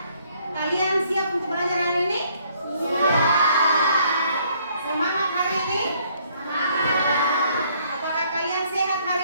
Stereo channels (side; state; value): both; inverted; correlation -0.65